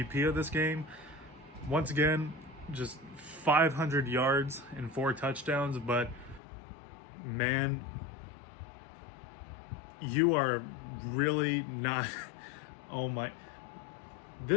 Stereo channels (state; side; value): drops out; right; at 6.4 s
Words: of this game. Once again, just 500 yards and 4 touchdowns, but man, you are really not. Oh my,